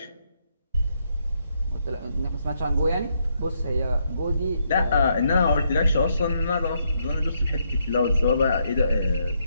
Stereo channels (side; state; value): both; inverted; correlation -0.76